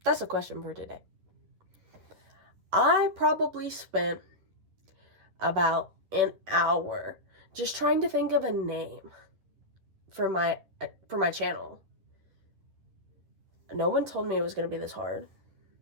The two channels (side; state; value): left; late; 10 ms